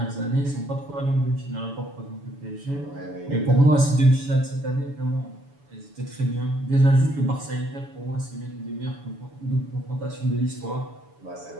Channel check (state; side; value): late; left; 7.0 ms